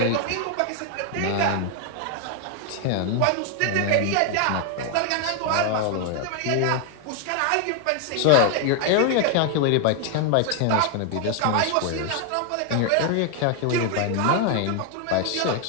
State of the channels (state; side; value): different; both; correlation 0.00